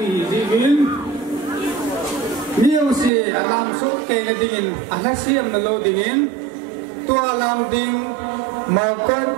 gì vin nhiều gì làm số tiền là tiền anh xem lô tiền tua làm tiền mau cất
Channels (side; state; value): left; drops out; at 3.1 s